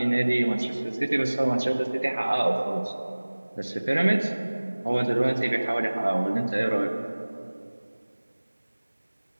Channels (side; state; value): both; inverted; correlation -1.00